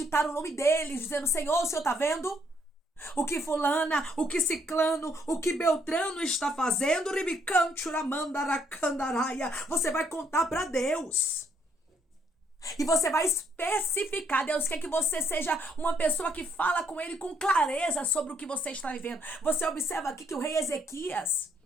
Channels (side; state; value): both; normal; correlation 0.70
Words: o nome deles, dizendo: Senhor, o Senhor está vendo? O que fulana, o que ciclano, o que Beltrano está fazendo? Você vai contar para Deus. E você vai especificar. Deus quer que você seja uma pessoa que fala com ele com clareza sobre o que você está vivendo. Você observa aqui que o rei Ezequias,